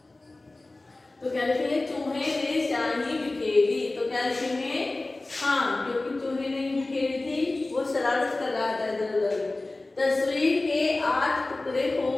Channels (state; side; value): quieter; right; 3.0 dB